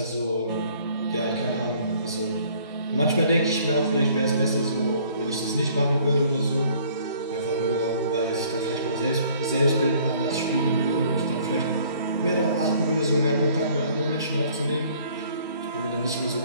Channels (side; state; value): both; inverted; correlation -0.57